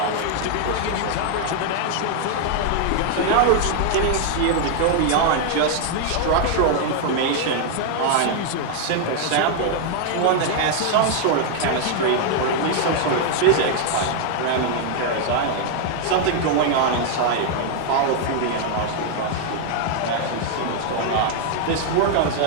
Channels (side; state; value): both; different; correlation 0.00